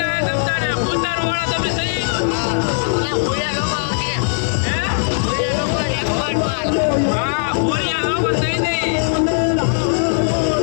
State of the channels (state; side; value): silent; right; digital silence